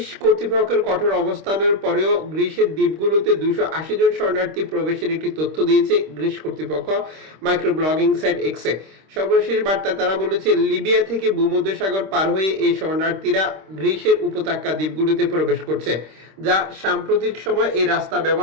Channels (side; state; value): left; late; 26 ms